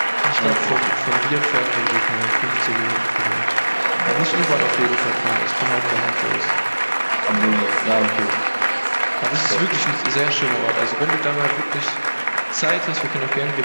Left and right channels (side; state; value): both; inverted; correlation -1.00